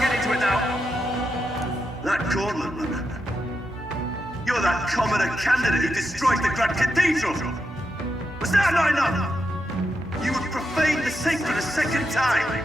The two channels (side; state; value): both; normal; correlation 0.85